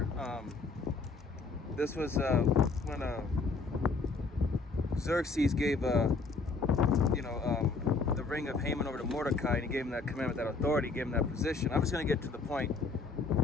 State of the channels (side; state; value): right; quieter; 4.1 dB